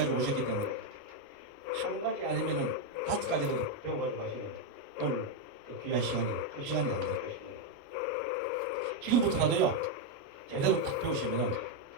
오셨기 때문에 한 가지 아니면은 5가지도 배워가지고 가시면 오늘 그 귀한 시간이 그 시간이 안 될 것입니다. 지금부터라도요 제대로 딱 배우시면은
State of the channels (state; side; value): late; left; 29 ms